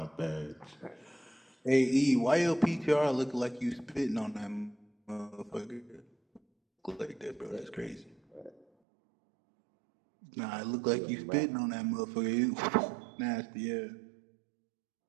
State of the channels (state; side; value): drops out; left; at 8.7 s